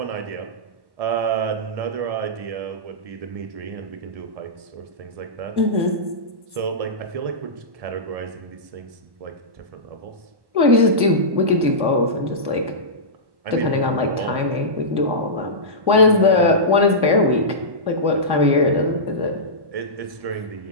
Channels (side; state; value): left; late; 1.1 ms